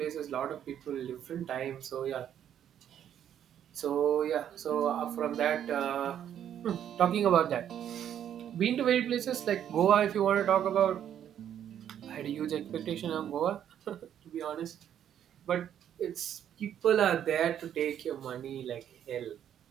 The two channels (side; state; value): left; quieter; 9.9 dB